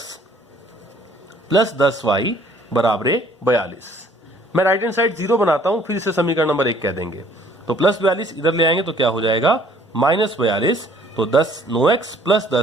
प्लस 10y बराबर 42। मैं राइट हैंड साइड 0 बनाता हूं, फिर इसे समीकरण नंबर 1 कह देंगे। तो प्लस 42 इधर ले आएंगे तो क्या हो जाएगा, -42। तो 9x प्लस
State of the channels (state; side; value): normal; both; correlation 0.58